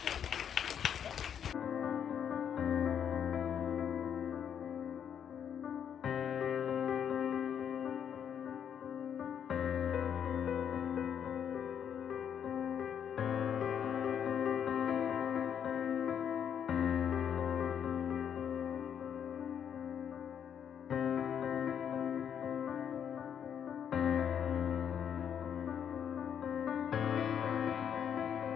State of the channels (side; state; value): right; quieter; 8.5 dB